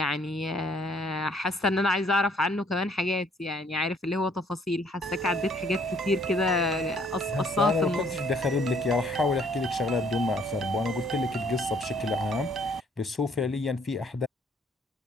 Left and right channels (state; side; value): normal; both; correlation 0.63